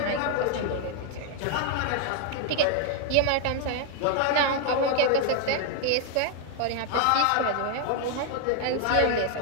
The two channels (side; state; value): both; different; correlation 0.00